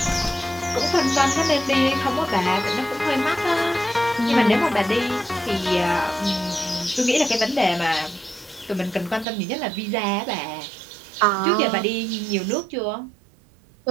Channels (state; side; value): drops out; left; at 9.2 s